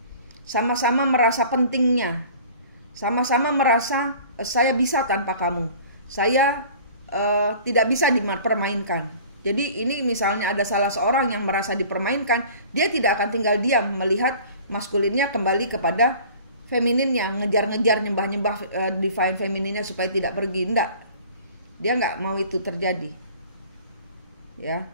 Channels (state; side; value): inverted; both; correlation -0.46